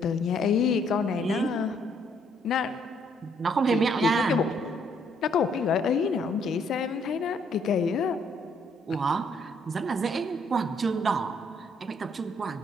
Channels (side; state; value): both; normal; correlation 0.68